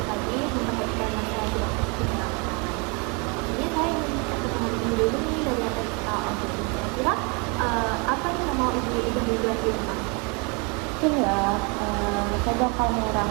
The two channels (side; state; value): left; quieter; 32.0 dB